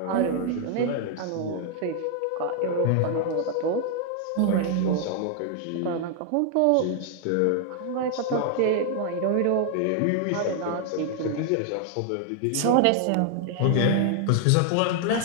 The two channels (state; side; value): different; both; correlation 0.00